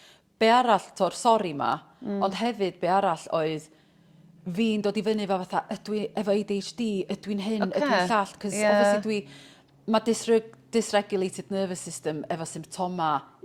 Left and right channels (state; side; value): identical; both; correlation 1.00